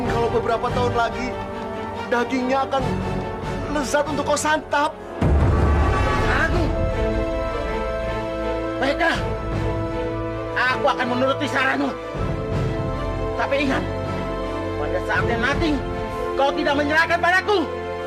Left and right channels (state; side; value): identical; both; correlation 1.00